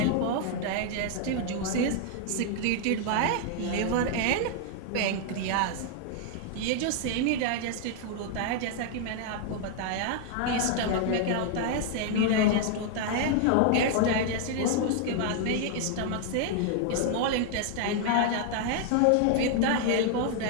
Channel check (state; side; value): different; both; correlation 0.00